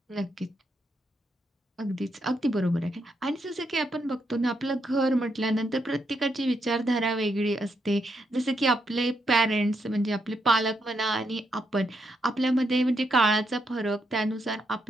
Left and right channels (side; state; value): both; normal; correlation 0.80